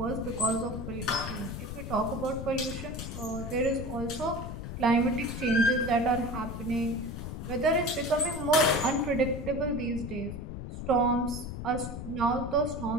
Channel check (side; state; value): left; noise; rumble, 7 dB below the sound